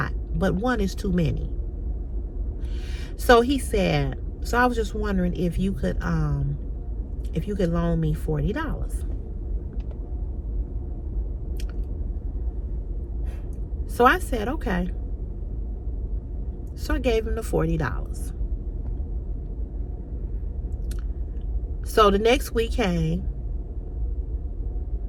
but one is too many. So he said, so I was just wondering if you could loan me $40. So I said, okay. So I gave him the $40. So the next week came.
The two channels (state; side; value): identical; both; correlation 1.00